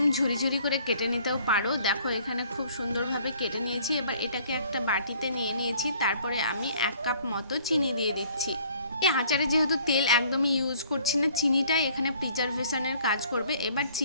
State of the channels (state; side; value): inverted; both; correlation -0.57